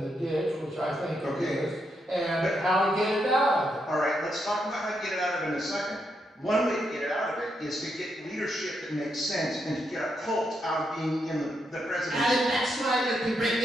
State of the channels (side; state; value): both; normal; correlation 0.80